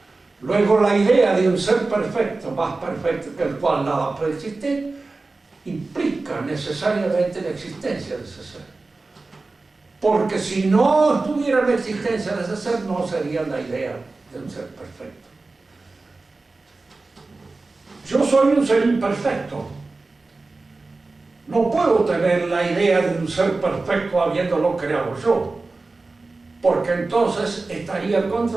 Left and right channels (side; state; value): left; quieter; 3.5 dB